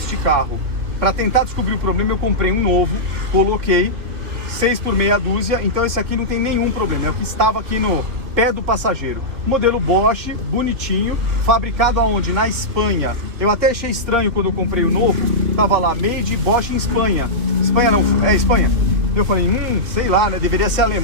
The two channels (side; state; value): left; late; 2.6 ms